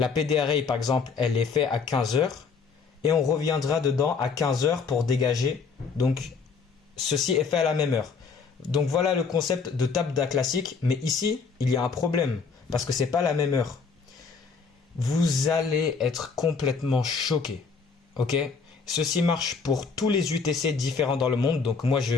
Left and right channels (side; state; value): right; quieter; 5.3 dB